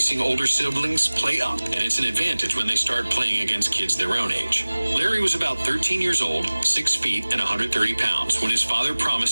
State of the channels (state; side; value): inverted; both; correlation -1.00